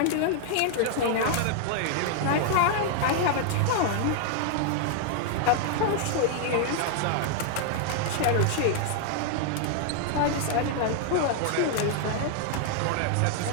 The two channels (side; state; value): both; different; correlation 0.00